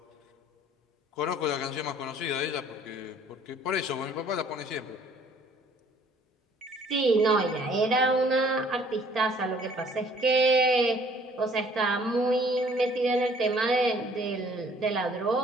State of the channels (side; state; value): both; normal; correlation 0.58